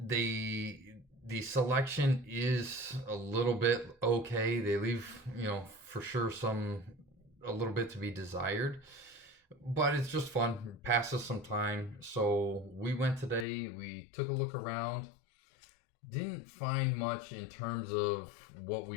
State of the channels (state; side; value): drops out; right; at 13.5 s